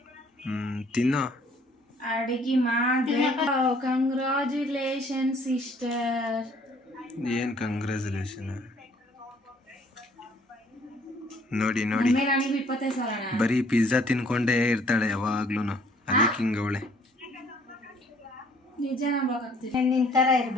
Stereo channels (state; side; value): normal; both; correlation 0.60